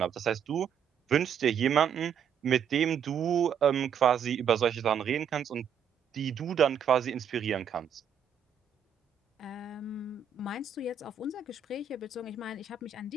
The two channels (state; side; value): quieter; left; 7.5 dB